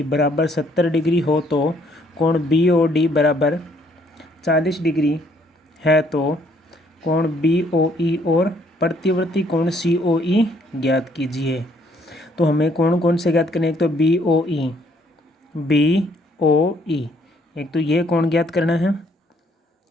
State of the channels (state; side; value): normal; both; correlation 0.66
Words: बराबर 70 डिग्री हो तो कोण बी ओ डी बराबर 40 डिग्री है तो कोण बी ओ ई और प्रतिवर्ती कोण सी ओ ई ज्ञात कीजिए। तो हमें कौन से ज्ञात करने, एक तो बी ओ ई, एक तो ये कोण ज्ञात करना है,